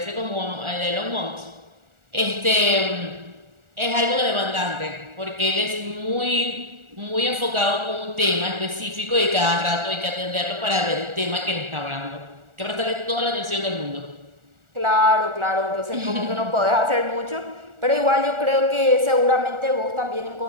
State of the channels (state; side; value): late; left; 1.4 ms